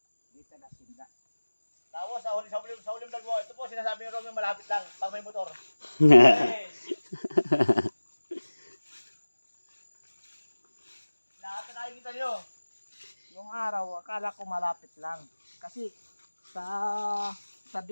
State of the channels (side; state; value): both; inverted; correlation -1.00